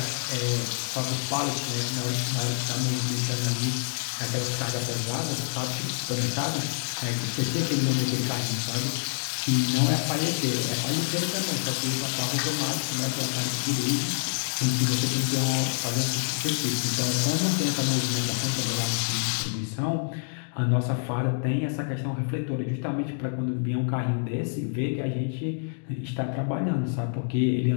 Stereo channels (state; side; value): silent; right; digital silence